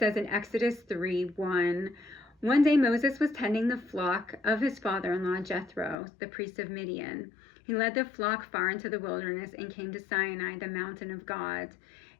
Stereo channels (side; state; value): right; drops out; at 6.0 s